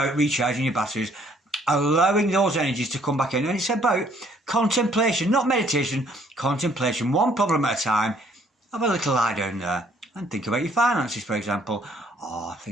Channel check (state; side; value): normal; both; correlation 0.63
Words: recharging your batteries, allowing those energies to come back in. And it's about contemplation, not meditation, contemplation. One problem at a time. Have a little lie down there and think about your finances, for example. Or